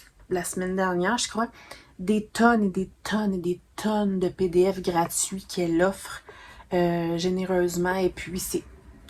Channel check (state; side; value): identical; both; correlation 1.00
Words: la semaine dernière, je crois, des tonnes et des tonnes et des tonnes de PDF gratuits qu'elle offre généreusement. Et puis,